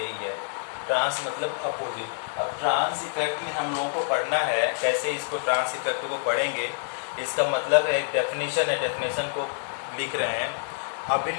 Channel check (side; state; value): right; silent; digital silence